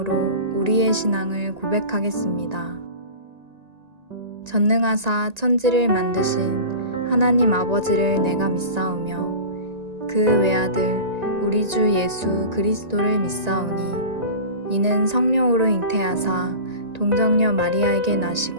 우리의 신앙을 고백하겠습니다. 전능하사 천지를 만드신 하나님 아버지를 내가 믿사오며 그 외아들 우리 주 예수 그리스도를 믿사오니 이는 성령으로 잉태하사 동정녀 마리아에게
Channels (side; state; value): left; late; 1.8 ms